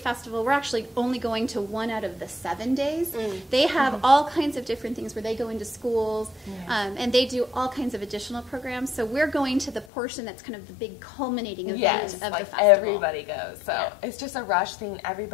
we're actually only going to 1 out of the 7 days. They have all kinds of different things where they go into schools, and they do all kinds of additional programs. So we're going to the portion that's kind of the big culminating event of like the festival. Everybody goes. So it's just a rush thing.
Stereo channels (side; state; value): right; drops out; at 9.9 s